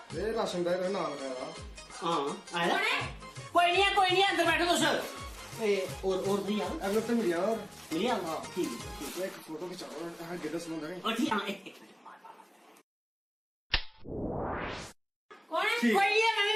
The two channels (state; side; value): identical; both; correlation 1.00